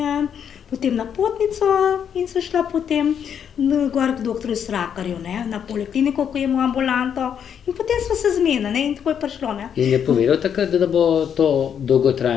potem na potnico in sem šla potem gor k doktorju Srakarju, ne, na polikliniko, ko je imel ambulanto, in potem smo se zmenili, ne, in tako je prišlo, ne. In je povedal takrat, da bo to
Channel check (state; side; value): quieter; right; 8.2 dB